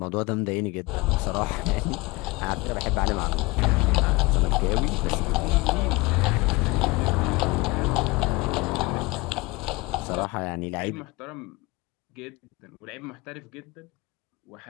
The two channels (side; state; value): right; quieter; 23.6 dB